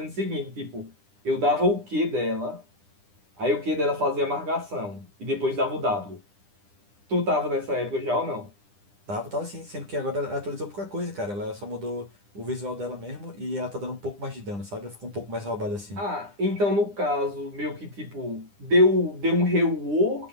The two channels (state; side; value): late; left; 9.9 ms